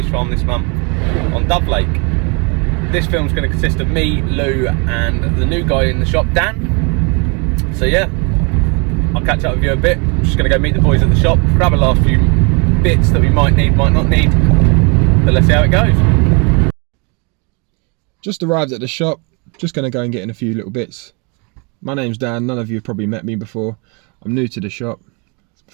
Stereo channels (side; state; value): left; quieter; 32.7 dB